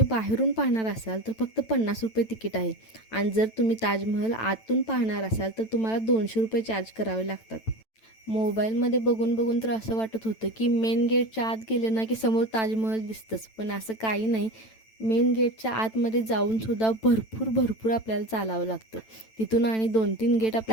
बाहेरून पाहणार असाल तर फक्त 50 रुपये तिकीट आहे आणि जर तुम्ही ताजमहल आतून पाहणार असाल तर तुम्हाला 200 रुपये चार्ज करावे लागतात. मोबाईलमध्ये बघून बघून तर असं वाटत होतं की मेन गेटच्या आत गेलं ना की समोर ताजमहल दिसतंच, पण असं काही नाही. मेन गेटच्या आतमध्ये जाऊन सुद्धा भरपूर भरपूर आपल्याला चालावं लागतं. तिथून आणि 2-3 गेट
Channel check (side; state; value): right; late; 9.0 ms